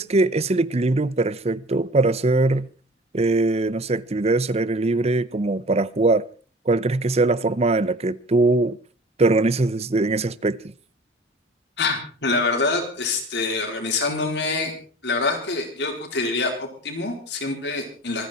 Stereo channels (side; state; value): both; normal; correlation 0.43